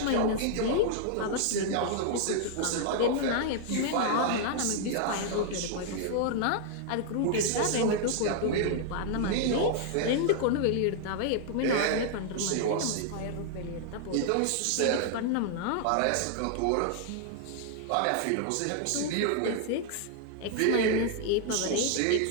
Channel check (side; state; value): both; different; correlation -0.01